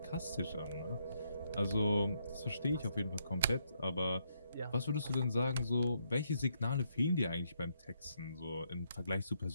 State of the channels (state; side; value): inverted; both; correlation -0.76